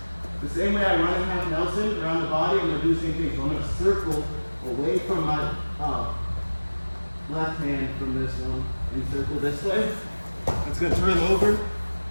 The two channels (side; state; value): both; inverted; correlation -1.00